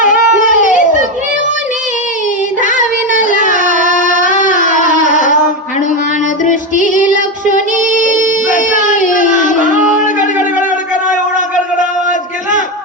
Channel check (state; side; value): normal; both; correlation 0.12